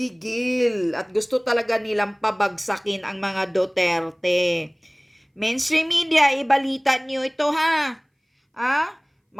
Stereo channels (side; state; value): both; identical; correlation 1.00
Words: at gusto talaga nilang pabagsakin ang mga Duterte. Mainstream media, ibalita niyo ito